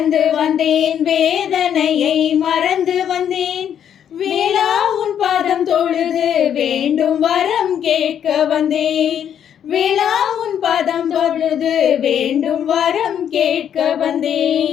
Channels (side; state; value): right; quieter; 9.2 dB